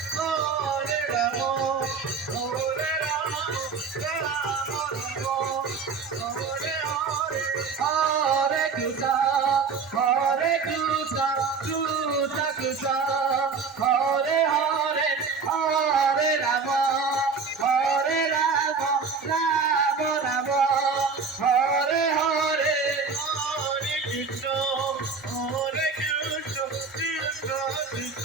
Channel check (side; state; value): left; quieter; 5.2 dB